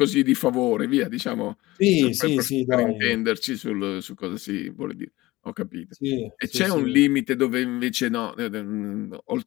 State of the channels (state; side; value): quieter; right; 19.2 dB